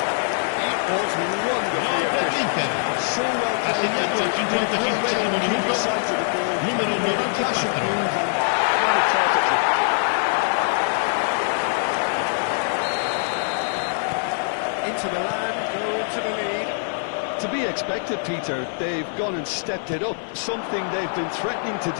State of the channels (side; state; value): right; silent; 60 dB below the other